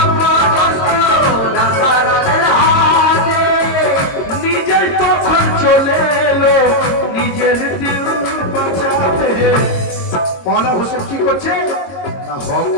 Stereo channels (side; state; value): right; late; 22 ms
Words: অপদস্থ হকের দিল বাঁচাতে মৌলা হোসেন কি করছে না